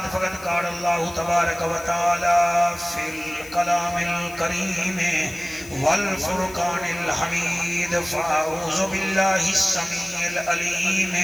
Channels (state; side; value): noise; left; hiss, 18 dB below the sound